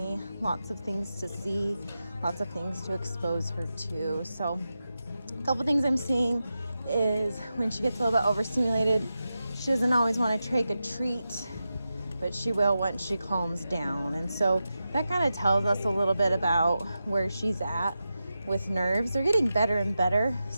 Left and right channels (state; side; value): inverted; both; correlation -0.91